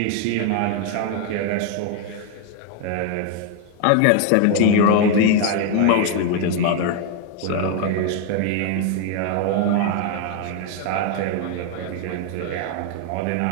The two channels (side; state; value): both; different; correlation 0.00